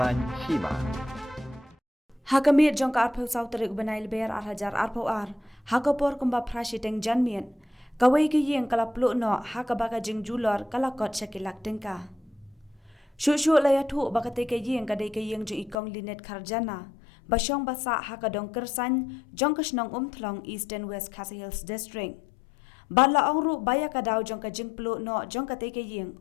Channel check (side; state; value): right; drops out; at 15.8 s